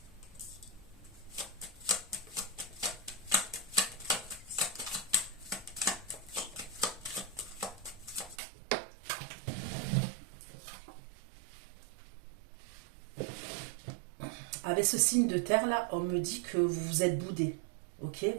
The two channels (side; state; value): left; drops out; at 8.3 s